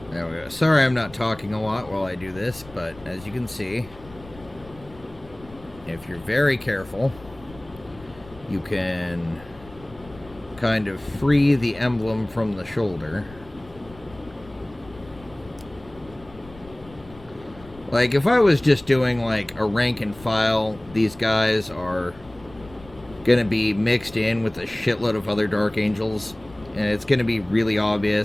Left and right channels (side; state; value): left; noise; rumble, 21 dB below the sound